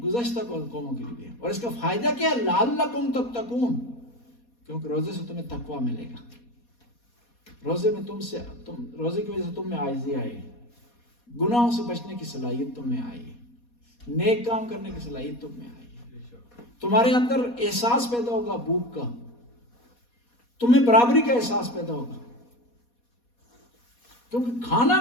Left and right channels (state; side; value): late; right; 4.2 ms